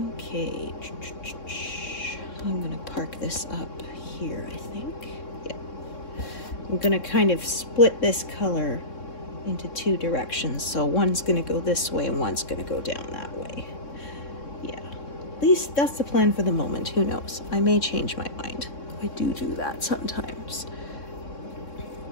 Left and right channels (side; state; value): right; late; 3.6 ms